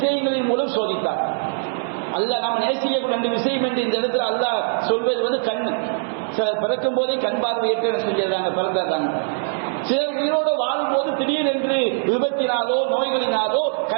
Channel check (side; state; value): left; silent; digital silence